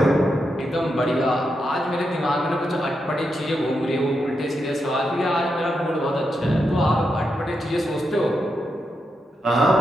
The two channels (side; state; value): both; normal; correlation 0.85